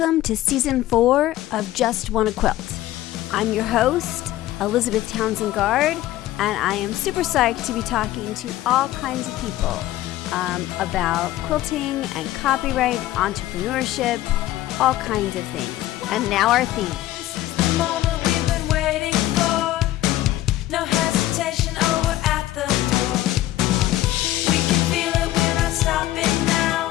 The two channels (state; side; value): quieter; right; 14.9 dB